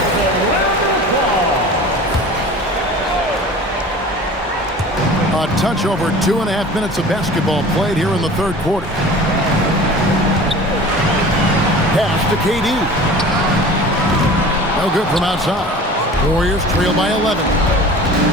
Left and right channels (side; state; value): both; normal; correlation 0.40